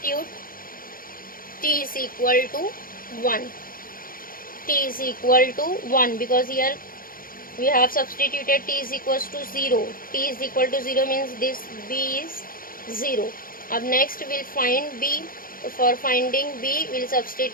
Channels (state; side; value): late; right; 0.41 ms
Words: T is equal to 1. T is equal to 1 because here we have substituted T is equals to 0. T is equal to 0 means this B is 0. Up next we will find B. For finding B, we will